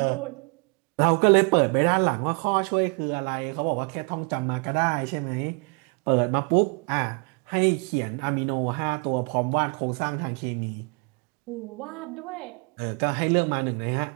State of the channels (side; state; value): left; quieter; 34.7 dB